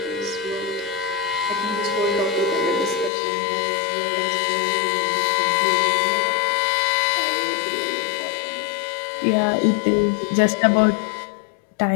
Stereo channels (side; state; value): right; drops out; at 3.1 s